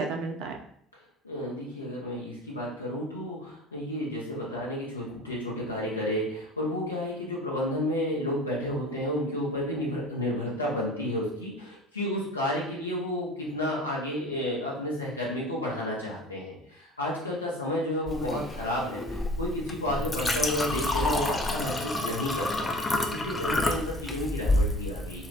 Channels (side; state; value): both; normal; correlation 0.39